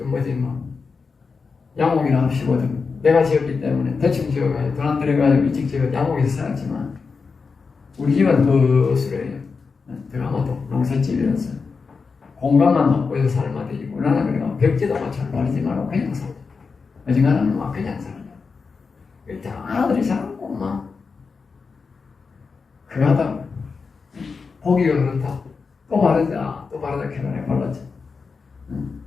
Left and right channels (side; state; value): right; quieter; 4.9 dB